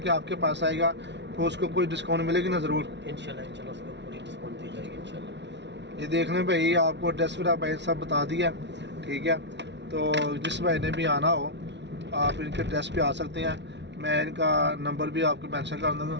आपके पास आएगा तो उसको कोई डिस्काउंट मिलेगी ना? ज़रूर इंशाल्लाह उसको पूरी डिस्काउंट दी जाएगी इंशाल्लाह। ये देख लें भाई, आपको एड्रेस फिर भाई सब बता दिया। ठीक है, तो जिस भाई ने भी आना हो आप इनके एड्रेस पे आ सकते हैं। मैं इनका नंबर भी आपको मेंशन कर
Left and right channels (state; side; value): late; left; 0.51 ms